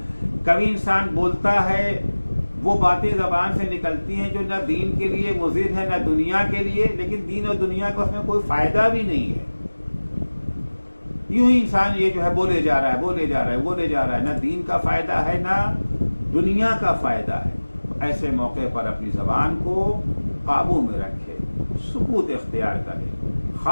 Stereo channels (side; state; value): both; inverted; correlation -1.00